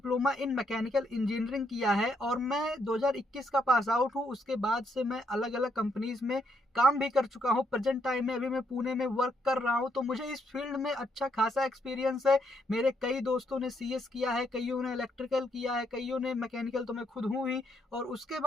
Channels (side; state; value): both; normal; correlation 0.75